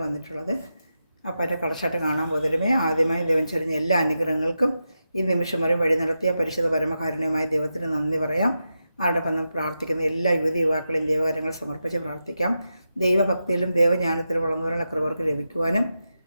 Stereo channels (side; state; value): both; inverted; correlation -0.89